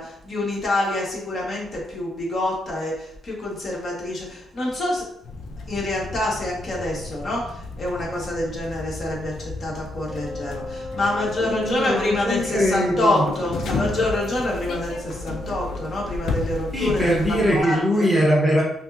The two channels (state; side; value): normal; both; correlation 0.79